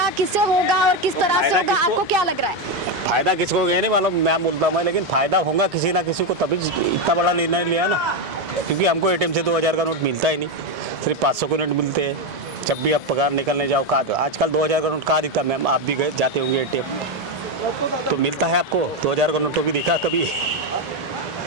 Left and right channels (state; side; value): normal; both; correlation 0.08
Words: किससे होगा और किस तरह से होगा, आपको क्या लग रहा है? फायदा किसको होगा नहीं मालूम, मैं बोलता हूँ, लेकिन फायदा होगा किसी ना किसी को, तभी इतना बड़ा निर्णय लिया ना। क्योंकि हमको एटीएम से 2000 का नोट मिलता ही नहीं, सिर्फ 500 के नोट मिलते हैं। जब भी आप पगार निकलने जाओ, कहाँ आजकल 2000 का नोट कहाँ दिखता? मैम आप भी गए जाते होंगे एटीएम, तो मिलता है आपको 2000 का नोट तो भी दिखा कभी?